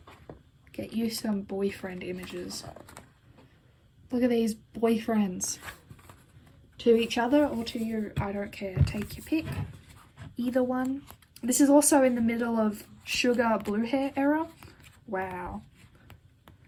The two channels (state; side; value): identical; both; correlation 1.00